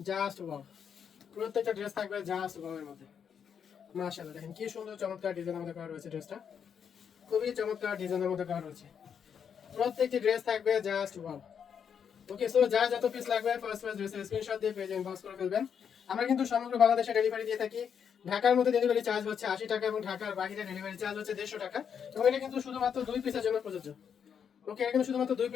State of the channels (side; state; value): right; quieter; 7.5 dB